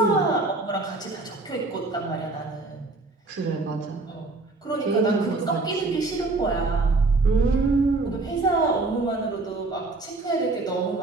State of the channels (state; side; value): quieter; left; 3.3 dB